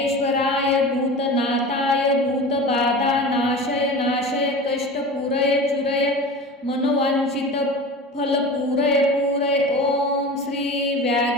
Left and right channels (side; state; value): both; normal; correlation 0.33